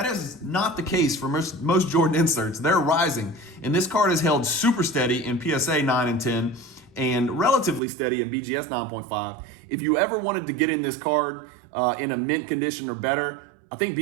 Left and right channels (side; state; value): left; drops out; at 7.8 s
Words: is not the case for most Jordan inserts. They're rising. And this card is held super steady in PSA 9 and 10 and relatively steady in BGS 9.5. If you ever wanted to get in this card in a mint condition or better, I think